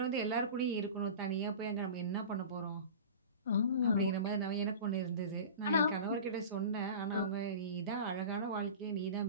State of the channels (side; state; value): both; inverted; correlation -0.34